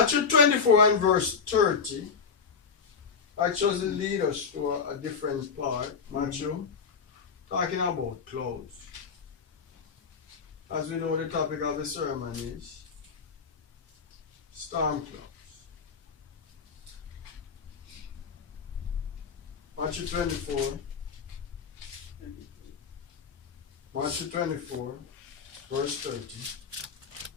24 and verse 30 actually lead us to a different part. Matthew talking about clothes. As we know, the topic of the sermon is storm clouds. Matthew 24. Matthew 24, verse 30.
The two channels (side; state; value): right; quieter; 5.8 dB